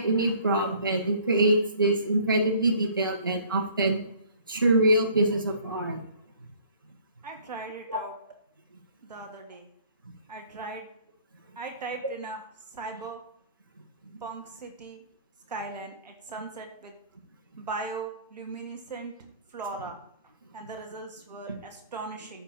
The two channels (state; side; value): inverted; both; correlation -0.56